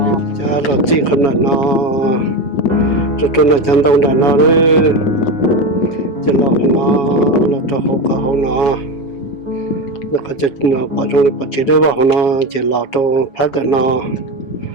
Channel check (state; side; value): late; right; 7.2 ms